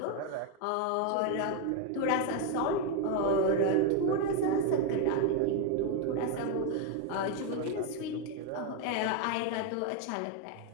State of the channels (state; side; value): different; both; correlation 0.01